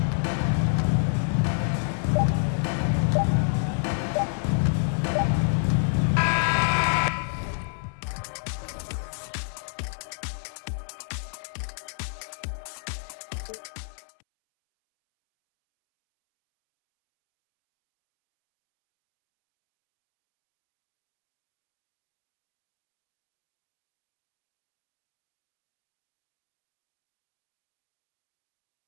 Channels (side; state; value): right; silent; 60 dB below the other